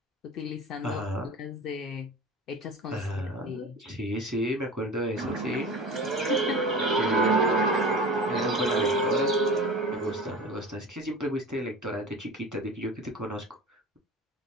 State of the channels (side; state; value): both; normal; correlation 0.35